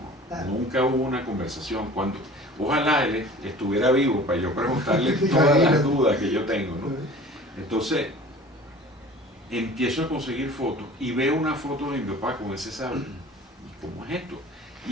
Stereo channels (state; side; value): normal; both; correlation 0.44